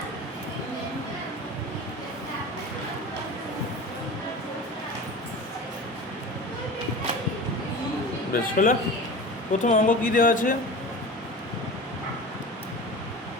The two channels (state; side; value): normal; both; correlation 0.34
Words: বেশ হলো। প্রথম অঙ্ক কী দেওয়া আছে?